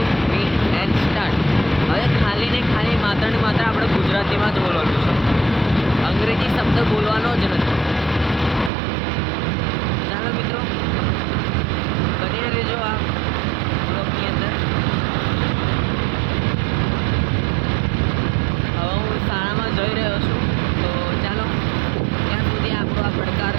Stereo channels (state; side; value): drops out; left; at 8.7 s